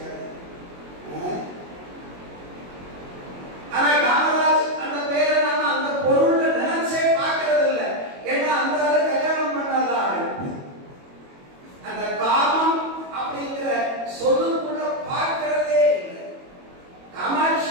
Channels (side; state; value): left; late; 22 ms